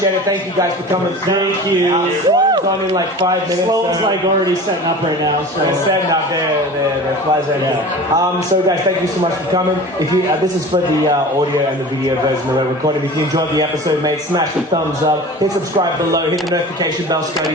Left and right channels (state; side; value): normal; both; correlation 0.37